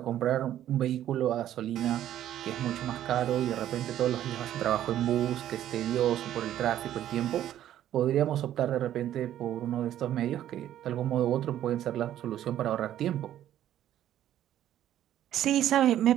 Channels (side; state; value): left; quieter; 11.9 dB